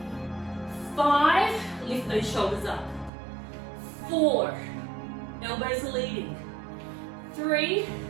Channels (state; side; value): drops out; left; at 3.1 s